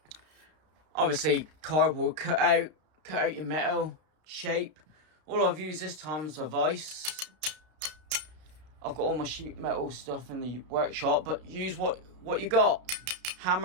Obviously, cardboard cut out your metal shape. All I've used this time is a vise. I've got all my sheet metal stuff in the workshop, but use what you got.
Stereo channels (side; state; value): left; late; 32 ms